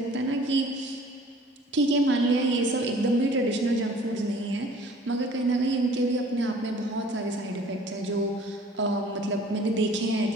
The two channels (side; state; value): both; normal; correlation 0.51